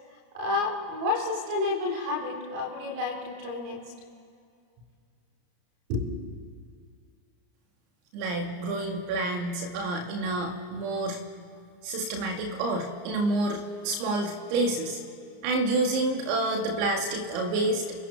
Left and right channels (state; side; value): late; left; 34 ms